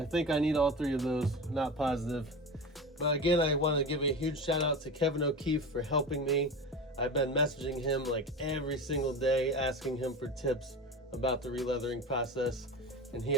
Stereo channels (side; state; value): both; normal; correlation 0.28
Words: I need all 3 of those, not positive. But again, I want to give a huge shout out to Kevin O'Keefe for helping me. I've been messaging him like every single day, asking him for tips about the releathering process, and he